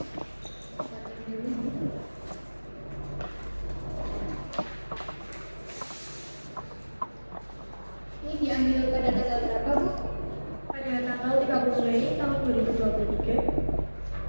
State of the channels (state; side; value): inverted; both; correlation -1.00